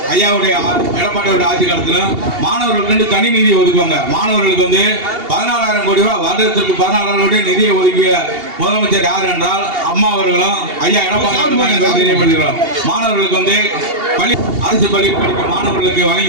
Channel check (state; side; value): late; left; 2.8 ms